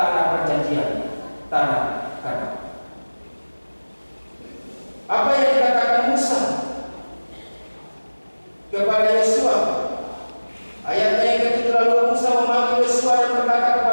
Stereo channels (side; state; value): both; inverted; correlation -1.00